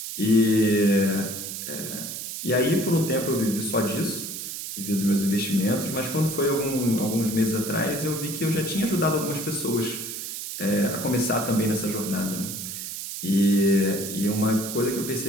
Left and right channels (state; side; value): noise; right; hiss, 7 dB below the sound